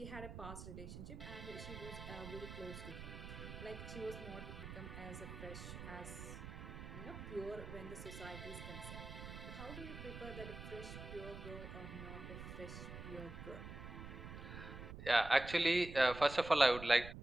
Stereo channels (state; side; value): noise; right; rumble, 10 dB below the sound